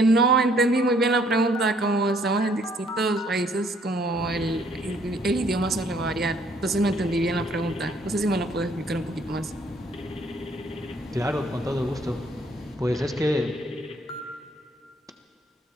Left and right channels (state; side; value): normal; both; correlation 0.64